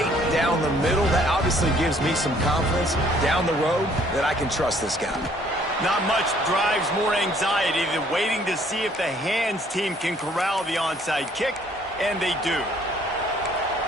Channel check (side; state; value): both; normal; correlation 0.61